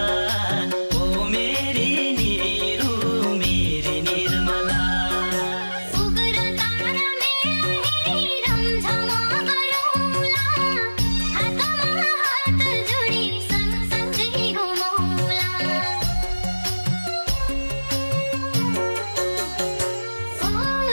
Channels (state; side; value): inverted; both; correlation -1.00